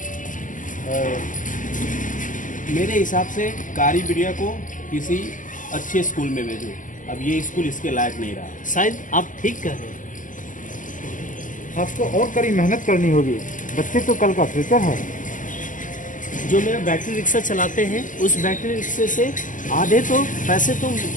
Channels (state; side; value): late; right; 0.38 ms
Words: मेरे हिसाब से कारी बिटिया को किसी अच्छे स्कूल में भेजो। अब ये स्कूल इसके लायक नहीं रहा। शायद आप ठीक कह रहे हैं। आपको और कड़ी मेहनत करनी होगी। बच्चे तो कल का फ्यूचर है। जो मेरा बैटरी रिक्शा चलाते हैं, उस बैटरी रिक्शे से आधे तो पैसे तो